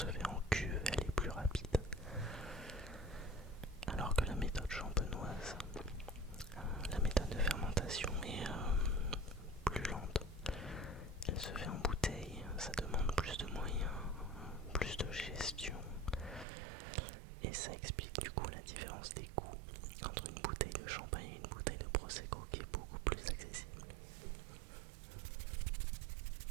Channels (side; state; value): left; drops out; at 16.4 s